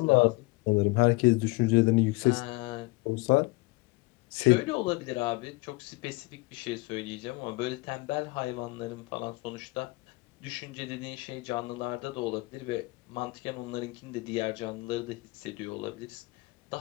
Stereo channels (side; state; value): right; quieter; 24.2 dB